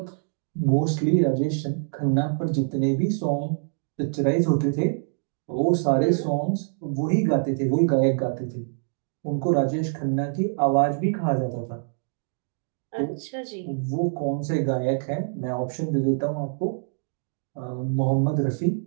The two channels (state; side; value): silent; left; digital silence